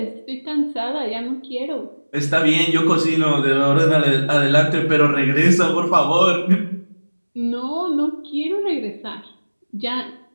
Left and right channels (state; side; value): inverted; both; correlation -1.00